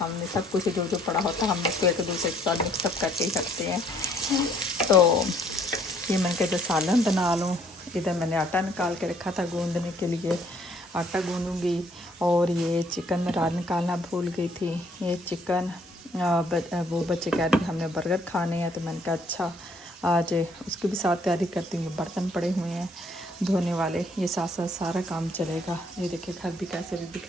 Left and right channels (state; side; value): normal; both; correlation 0.64